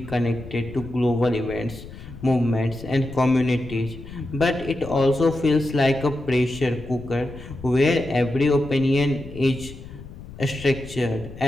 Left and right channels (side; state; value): left; noise; rumble, 15 dB below the sound